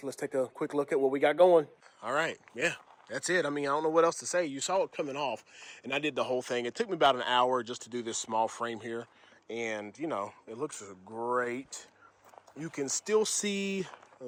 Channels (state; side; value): identical; both; correlation 1.00